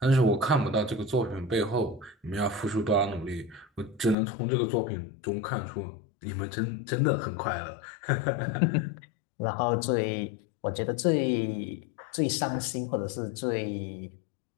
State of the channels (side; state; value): right; drops out; at 4.2 s